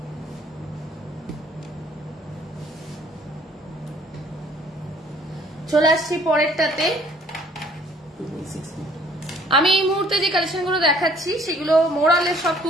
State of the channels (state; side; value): normal; both; correlation 0.58